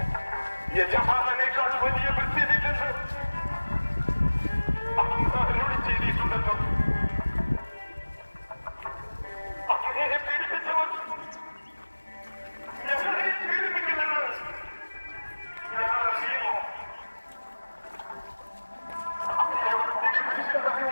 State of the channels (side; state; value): both; inverted; correlation -1.00